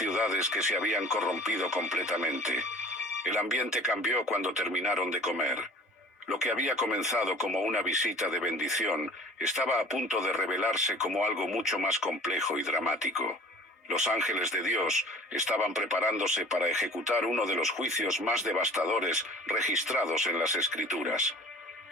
que se habían corrompido completamente. El ambiente cambió cuando terminaron de comer. Lo que había comenzado como una visita de bendición estaba a punto de revelarse como algo mucho más complejo y dramático. Los ángeles de Dios estaban preparándose para ejecutar uno de los juicios más devastadores registrados en las Escrituras.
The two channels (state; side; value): normal; both; correlation 0.45